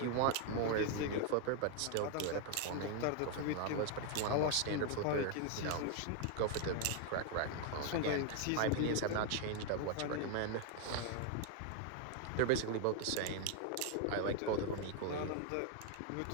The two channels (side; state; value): both; different; correlation 0.00